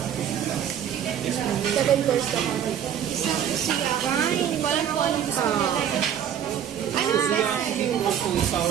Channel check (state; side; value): quieter; left; 9.3 dB